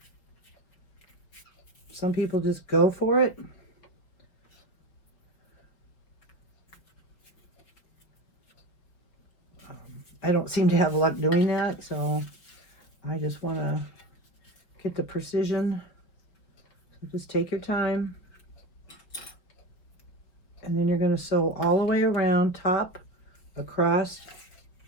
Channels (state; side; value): late; right; 5.2 ms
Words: Some people just go for it. I don't seem to have luck doing that, so I just want to get the precision. So just take your time. And then you're going to sew all the way around, top, across,